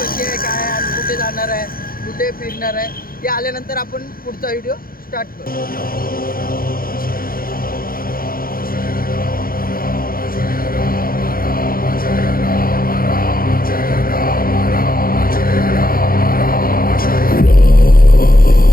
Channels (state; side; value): late; right; 0.42 ms